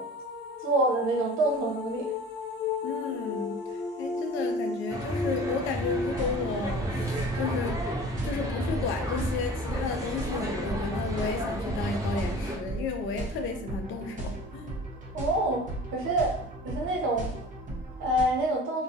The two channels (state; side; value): normal; both; correlation 0.42